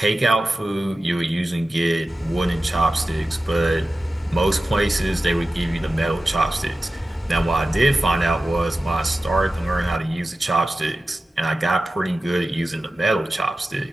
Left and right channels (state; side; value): normal; both; correlation 0.94